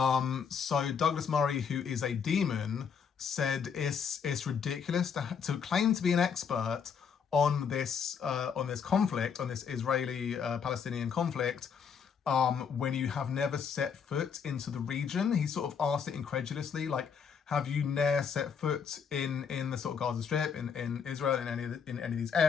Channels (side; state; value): right; quieter; 6.7 dB